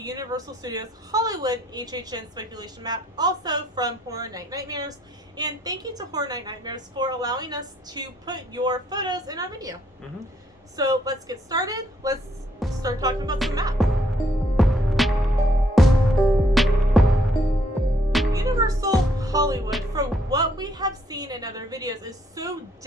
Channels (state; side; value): normal; both; correlation 0.69